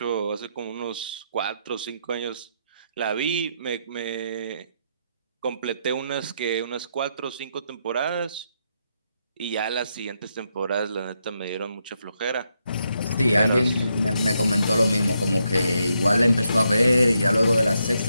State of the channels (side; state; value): both; inverted; correlation -0.80